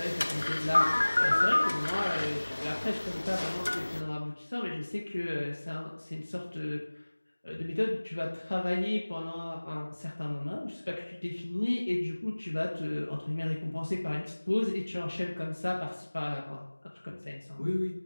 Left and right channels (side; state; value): both; inverted; correlation -1.00